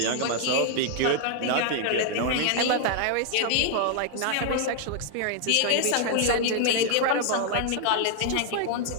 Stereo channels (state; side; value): different; both; correlation 0.00